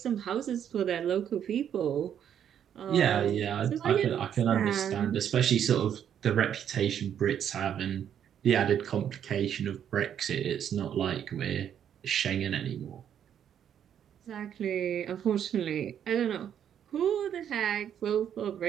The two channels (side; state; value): left; quieter; 9.3 dB